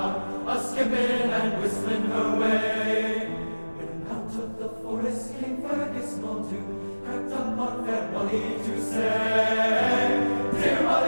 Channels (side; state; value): both; inverted; correlation -1.00